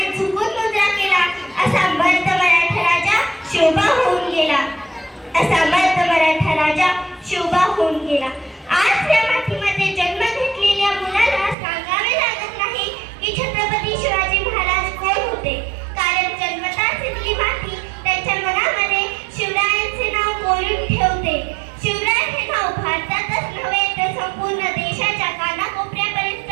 झुकून मुद्रा केला. असा मर्द मराठा राजा शोभा होऊन गेला. असा मर्द मराठा राजा शोभा होऊन गेला. आज या मातीमध्ये जन्म घेतलेल्या मुलाला सांगावे लागत नाही की छत्रपती शिवाजी महाराज कोण होते, कारण जन्मताच इथली माती त्यांच्या मनामध्ये शिवरायांचे नाव कोरून ठेवते. शिवराय हे नाव भारतातच नव्हे तर संपूर्ण देशाच्या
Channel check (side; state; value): left; drops out; at 11.6 s